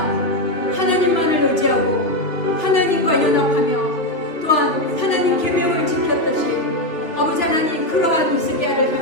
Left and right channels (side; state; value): right; late; 2.9 ms